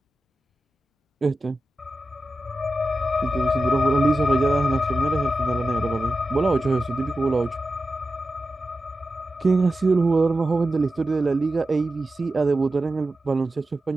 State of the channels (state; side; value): normal; both; correlation 0.92